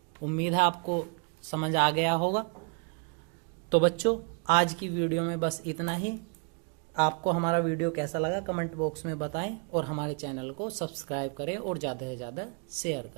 उम्मीद है आपको समझ आ गया होगा। तो बच्चों आज की वीडियो में बस इतना ही। आपको हमारा वीडियो कैसा लगा कमेंट बॉक्स में बताएं और हमारे चैनल को सब्सक्राइब करें और ज़्यादा से ज़्यादा शेयर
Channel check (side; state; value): left; quieter; 37.4 dB